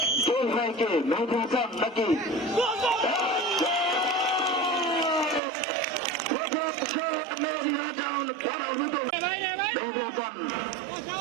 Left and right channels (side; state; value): left; drops out; at 5.4 s